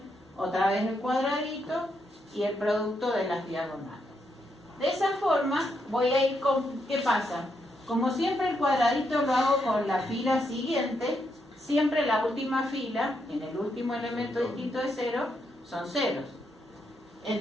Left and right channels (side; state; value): both; normal; correlation 0.80